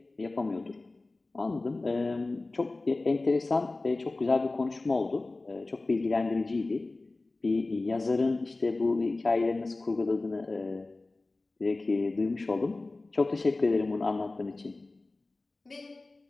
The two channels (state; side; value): quieter; right; 3.2 dB